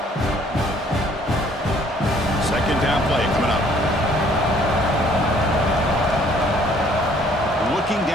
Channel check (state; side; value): normal; both; correlation 0.60